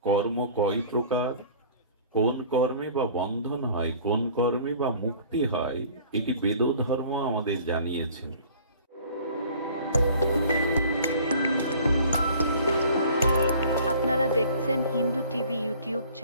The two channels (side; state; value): both; inverted; correlation -0.49